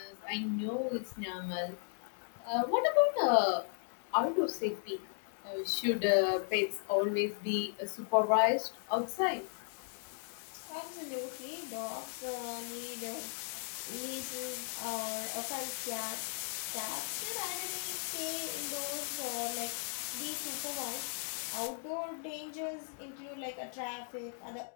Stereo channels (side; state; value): right; silent; 54 dB below the other